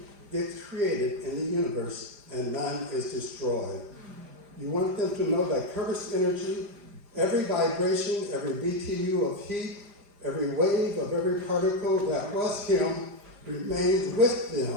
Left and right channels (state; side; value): late; left; 4.9 ms